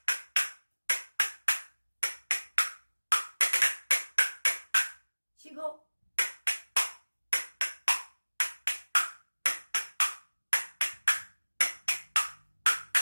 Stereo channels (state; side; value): inverted; both; correlation -1.00